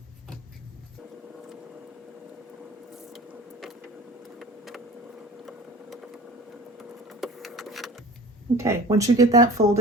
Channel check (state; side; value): normal; both; correlation 0.40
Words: Okay, once you get that